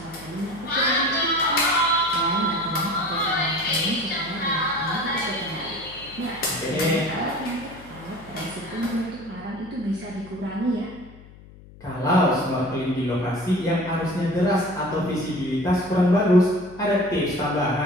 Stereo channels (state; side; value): noise; left; hum, 21 dB below the sound